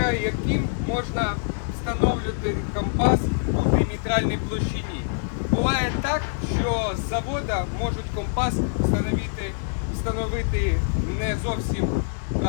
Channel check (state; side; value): silent; right; digital silence